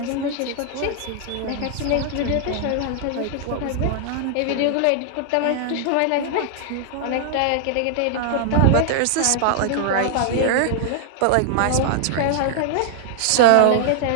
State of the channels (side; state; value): both; different; correlation -0.01